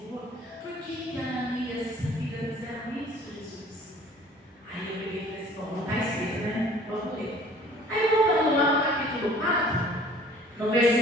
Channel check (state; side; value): normal; both; correlation 0.51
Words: por que Ananias e essa filha fizeram isso, Jesus? Aí eu peguei e falei assim, bom, não está escrito, né? Vamos ler. Aí voltando lá no capítulo 4, no